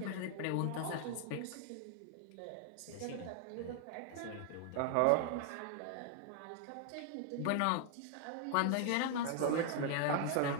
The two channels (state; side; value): different; both; correlation 0.00